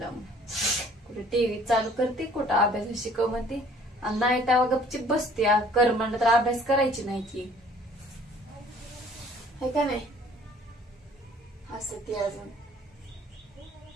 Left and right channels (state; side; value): normal; both; correlation 0.55